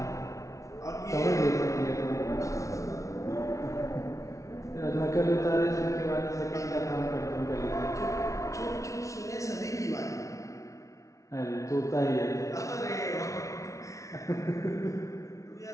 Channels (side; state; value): right; late; 0.15 ms